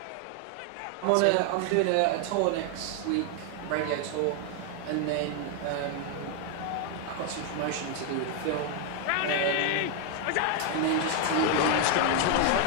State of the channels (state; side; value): different; both; correlation 0.00